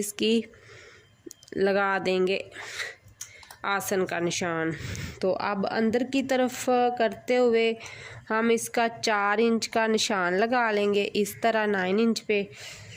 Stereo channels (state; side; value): identical; both; correlation 1.00